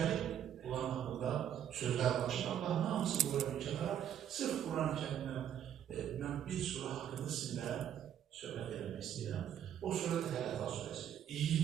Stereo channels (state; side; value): quieter; left; 9.9 dB